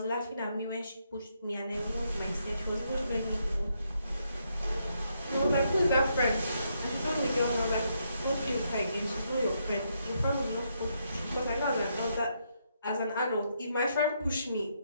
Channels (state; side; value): inverted; both; correlation -0.77